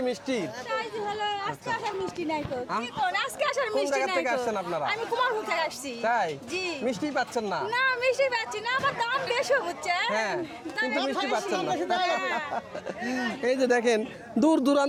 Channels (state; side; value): identical; both; correlation 1.00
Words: মিষ্টি। তাই যে হলো, আজকে আসার মিষ্টি নাই তো। কি কোন আজকে আসার কোন মিষ্টি জায়গা নাই থেকে তো। আসছেন আপনারা? আমি কুমারপুর থেকে আসছি। তাই জি। মিষ্টি পাচ্ছেন না? না মিষ্টি পাচ্ছি না, আমার দাম বেশি হচ্ছে। হ্যাঁ, কিন্তু মিষ্টি পাচ্ছেন না। হ্যাঁ। এই যে দেখেন দূর